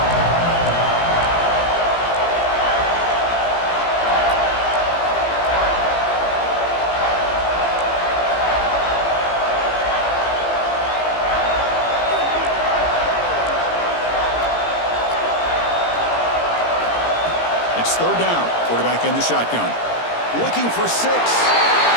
It's 3rd down. Quarterback in the shotgun. Looking for 6.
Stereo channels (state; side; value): late; right; 17 ms